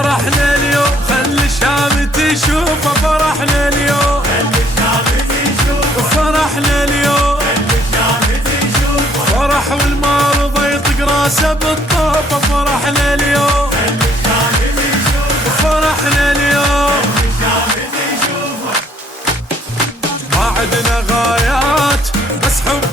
اليوم خلي الشام تشوفه، فرحنا اليوم فرحنا اليوم فرح والمرضى يطق راسه بالطوفة. فرحنا اليوم فرحنا اليوم ما عدنا غايات بس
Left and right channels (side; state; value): both; normal; correlation 0.64